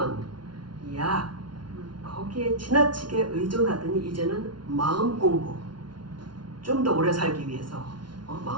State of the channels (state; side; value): late; left; 0.71 ms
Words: 약, 거기에 지나치게 의존하더니 이제는 마음 공부, 좀 더 오래 살기 위해서